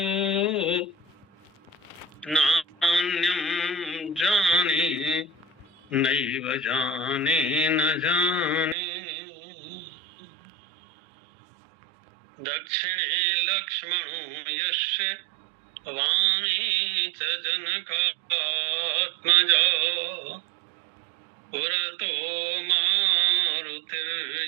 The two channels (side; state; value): left; drops out; at 8.8 s